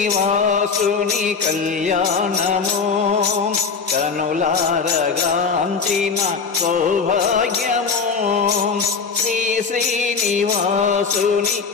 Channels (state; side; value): quieter; right; 5.3 dB